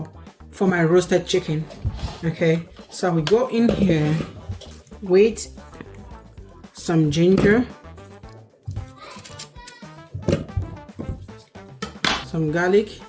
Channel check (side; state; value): both; identical; correlation 1.00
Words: for my roasted chicken. Okay, so we go in here with some ginger, some garlic,